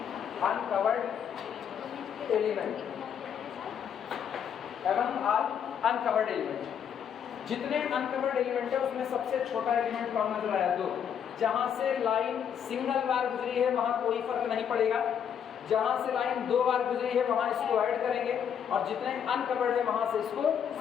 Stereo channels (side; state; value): right; quieter; 8.3 dB